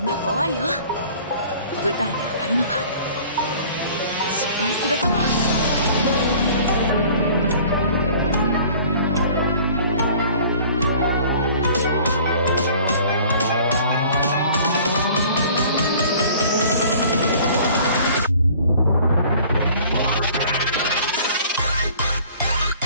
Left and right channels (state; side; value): inverted; both; correlation -0.51